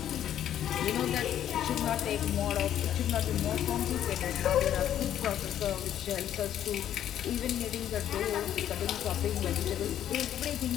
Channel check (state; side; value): quieter; right; 10.8 dB